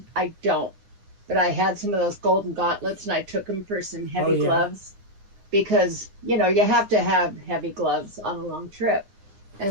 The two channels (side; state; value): left; late; 9.7 ms